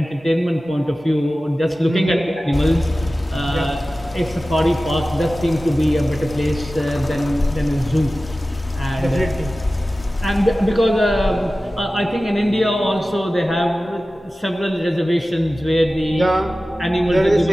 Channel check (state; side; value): normal; both; correlation 0.96